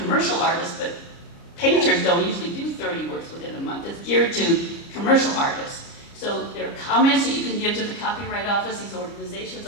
artist, but painters don't usually do 30 works within a month. It's geared to commercial artists. So there are comments that you can give to the Copyright Office. These organizations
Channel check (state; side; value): late; right; 29 ms